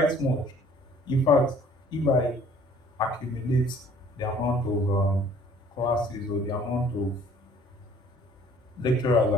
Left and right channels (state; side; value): normal; both; correlation 0.55